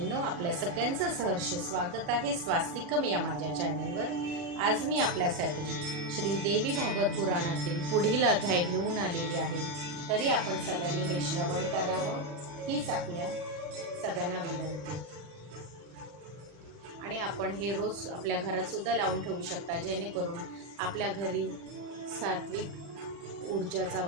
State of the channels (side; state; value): left; late; 40 ms